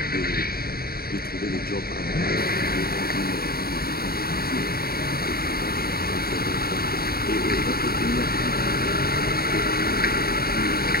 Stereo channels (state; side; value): late; right; 0.44 ms